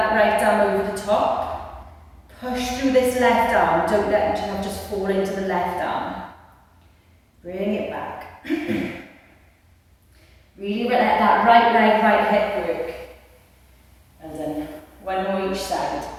right arm over the top. Push through this left arm. Don't let yourself just fall into the left arm. Bring it back. Really let that right leg, right hip work. And then one more each side.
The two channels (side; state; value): both; identical; correlation 1.00